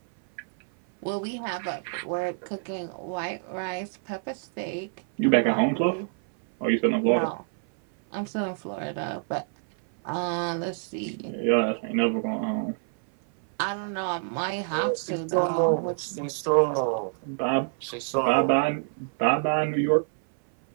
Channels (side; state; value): left; silent; 57 dB below the other